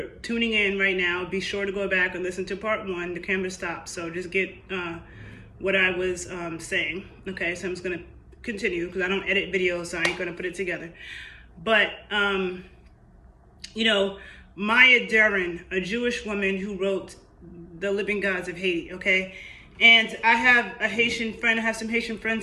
tuning in right now, be sure to go back and listen to part 1. The camera stopped, so just get what I was saying. Okay, so I'm just gonna continue because I don't edit videos, so I ain't gonna put it together. But Maya Deren, a Jewish woman who wrote The Living Gods of Haiti, okay? And I have a Haitian friend, I have some Haitian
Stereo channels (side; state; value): both; identical; correlation 1.00